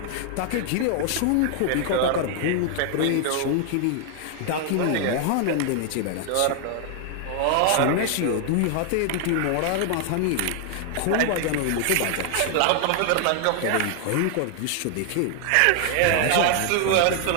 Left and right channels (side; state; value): both; different; correlation 0.00